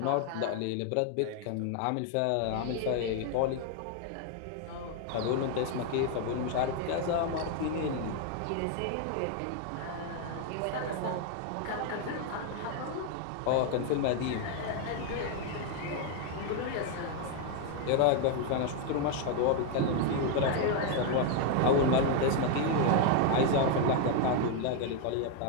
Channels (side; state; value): both; different; correlation 0.00